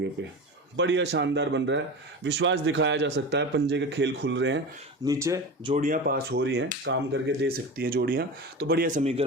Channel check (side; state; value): both; normal; correlation 0.28